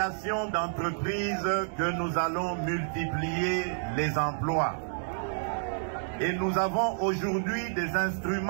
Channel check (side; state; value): left; silent; digital silence